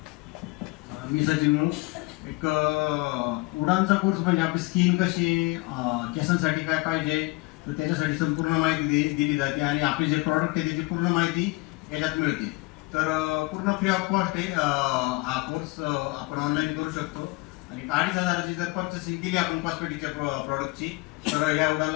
मी सचिन मुळ. एक उडानचा कोर्स म्हणजे आपली स्किन कशी, केसांसाठी काय पाहिजे तर त्याच्यासाठी संपूर्ण माहिती दिली जाते आणि आपले जे प्रॉडक्ट आहे त्याची पूर्ण माहिती याच्यात मिळते. तर पूर्ण फ्री ऑफ कॉस्ट आहे. हा कोर्स आपण ऑनलाईन करू शकतो आणि 2,500ची जर पर्चेसिंग केली आपण कॉस्मेटिकच्या प्रॉडक्टची तर या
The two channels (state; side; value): quieter; right; 24.1 dB